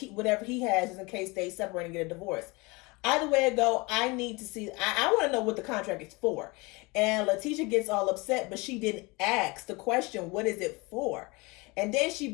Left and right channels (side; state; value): right; quieter; 25.7 dB